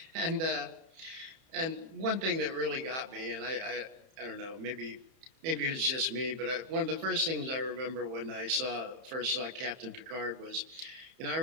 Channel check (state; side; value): late; left; 31 ms